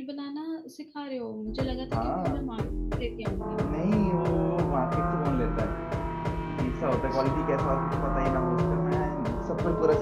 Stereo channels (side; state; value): both; identical; correlation 1.00